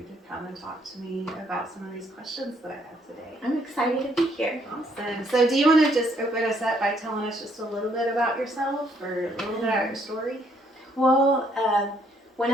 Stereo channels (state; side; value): normal; both; correlation 0.68